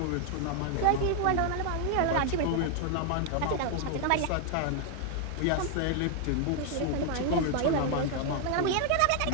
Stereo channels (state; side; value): different; both; correlation 0.00